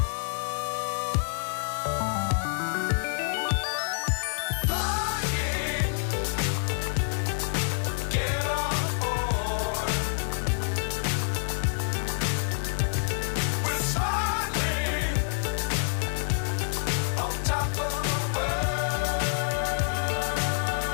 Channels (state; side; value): silent; right; 56 dB below the other